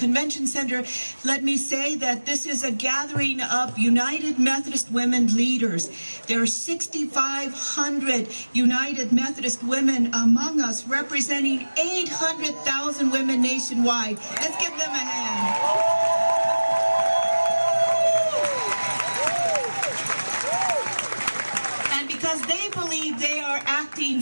center, let me say that this is a gathering of United Methodist Women leaders. There are 6,500 United Methodist women among us, representing 800,000 women nationwide. Let's give them a hand. Because they believe they are acting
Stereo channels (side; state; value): both; inverted; correlation -1.00